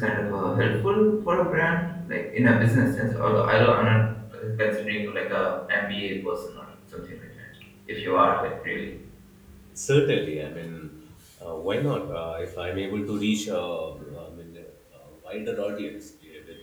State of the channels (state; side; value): identical; both; correlation 1.00